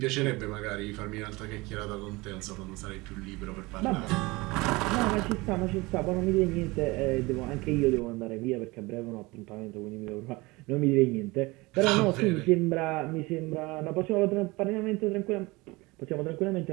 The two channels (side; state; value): left; quieter; 22.9 dB